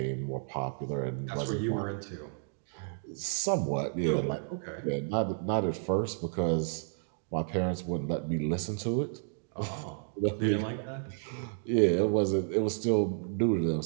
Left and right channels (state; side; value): silent; left; digital silence